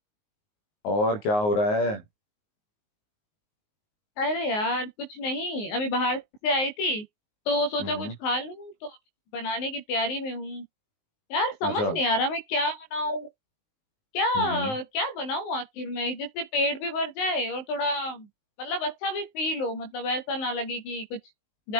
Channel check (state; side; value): late; right; 19 ms